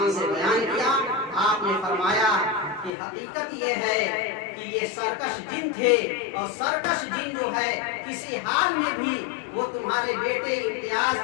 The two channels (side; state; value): right; drops out; at 2.9 s